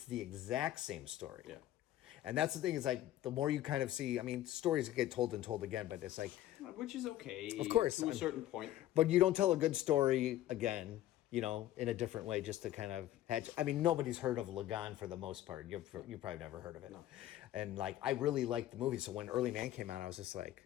the exact same story. Yeah. And that's the thing, is like, the more you kind of see, I mean, stories get told and told again, but it's like, Which is okay. Of course. To a certain point. but you don't tell a good story again, you know, in a different way, just to kind of hatch. I mean, nobody's heard of Lagan for the most part. You probably never heard of it. No. And like, I really liked the movie. So when Early Man came out, I was just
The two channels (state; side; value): quieter; right; 13.6 dB